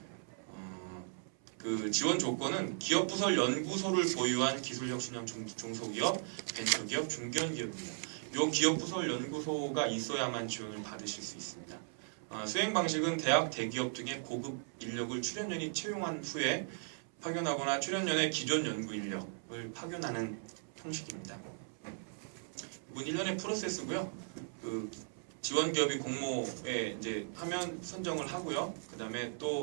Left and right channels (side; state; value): left; silent; 53 dB below the other